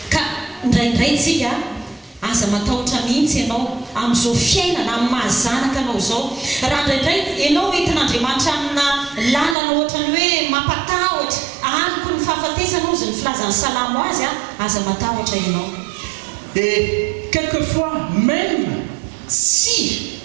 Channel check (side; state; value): left; drops out; at 9.6 s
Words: Ka indraindray tsika aza matahotra mihitsy ianao amin'izao fiainana amin'ny mahazanaka anao zao. Raha indraindray ianao entin'Andriamanitra amina lalana ohatrany hoe mampatahotra, aliko ny fahafatesanao izy ny filazan'ny salamo azy a, aza matahotra ianao. Et quelquefois, même si